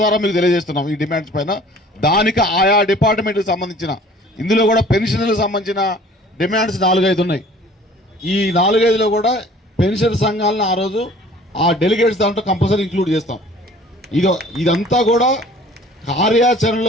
మీకు తెలియజేస్తున్నాం ఈ డిమాండ్స్ పైన. దానికి ఆయా డిపార్ట్మెంట్కి సంబంధించిన ఇందులో కూడా పెన్షన్లకు సంబంధించిన డిమాండ్స్ 4-5 ఉన్నాయి. ఈ 4-5లో కూడా పెన్షన్ సంఘాలను ఆ రోజు ఆ డెలిగేట్స్ దాంట్లో కంపల్సరీ ఇంక్లూడ్ చేస్తాం. ఇదంతా కూడా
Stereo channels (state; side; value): normal; both; correlation 0.50